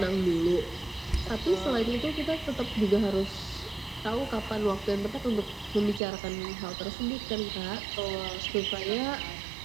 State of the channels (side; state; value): left; drops out; at 6.0 s